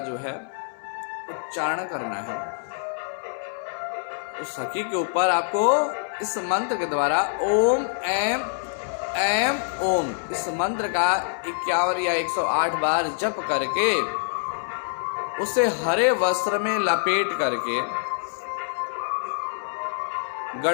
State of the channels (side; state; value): right; silent; 61 dB below the other